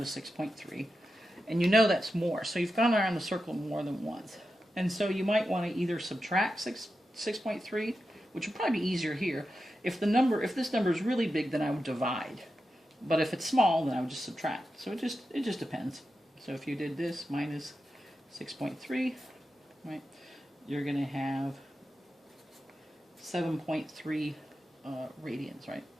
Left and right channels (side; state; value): both; normal; correlation 0.90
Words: to 6.3. And you know that's more. So you've gone around the circle more than once. And so you might want to either subtract 6.3, which would probably be easier here. If this number is really big, then I would divide. But if it's small, then I would just subtract. So it just depends. So if you did this minus 6.3, right, you're going to have 7.3 radians, right?